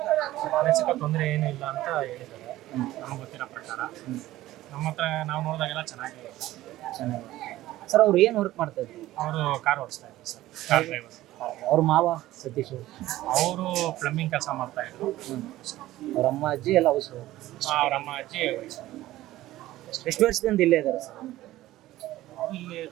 ಮಾನಸಿಕ ತೊಂದರೆ ಏನೂ ಇಲ್ಲ ಅಂತ ಹೇಳಿದ್ದಾರೆ ನಮಗೆ ಗೊತ್ತಿರೋ ಪ್ರಕಾರ. ನಮ್ಮ ಹತ್ರ ನಾವು ನೋಡಿದಾಗೆಲ್ಲ ಚೆನ್ನಾಗಿದೆ. ಸರ್ ಅವ್ರು ಏನು ವರ್ಕ್ ಮಾಡ್ತಾ ಇದ್ರು? ಅವರು ಕಾರ್ ಓಡಿಸ್ತಾ ಇದ್ರು ಸರ್, ಕಾರ್ ಡ್ರೈವರ್. ಅವ್ರ ಮಾವ ಸತೀಶ್ ಅವರು ಪ್ಲಂಬಿಂಗ್ ಕೆಲಸ ಮಾಡ್ತಾ ಇದ್ರು. ಅವ್ರ ಅಮ್ಮ ಅಜ್ಜಿ ಎಲ್ಲ ಅವಸರು. ಅವ್ರ ಅಮ್ಮ ಅಜ್ಜಿ ಎಷ್ಟು ವರ್ಷದಿಂದ ಇಲ್ಲೇ ಇದ್ದಾರೆ ಸರ್? ಇಲ್ಲಿ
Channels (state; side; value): quieter; left; 15.7 dB